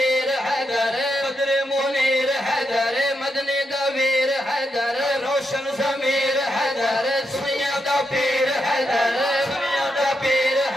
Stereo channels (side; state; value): both; normal; correlation 0.83